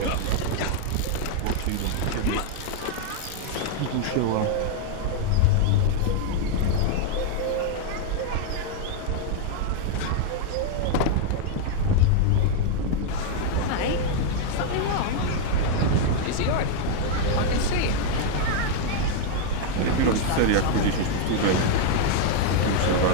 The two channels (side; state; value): both; different; correlation 0.00